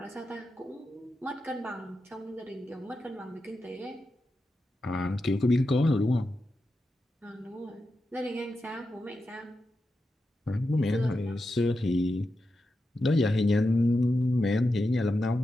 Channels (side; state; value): both; normal; correlation 0.89